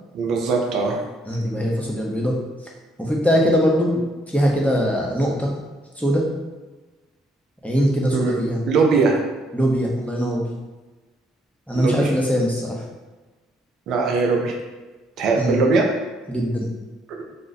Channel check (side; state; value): both; normal; correlation 0.71